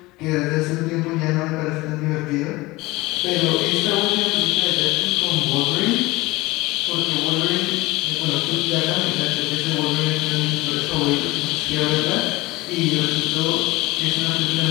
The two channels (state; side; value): quieter; right; 20.9 dB